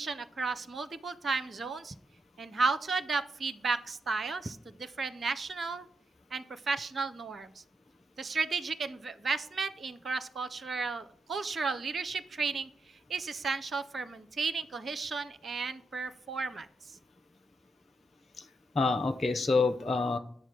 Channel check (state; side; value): normal; both; correlation 0.82